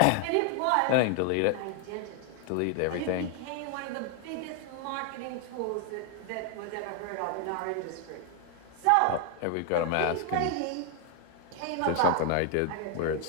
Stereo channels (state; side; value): different; both; correlation 0.00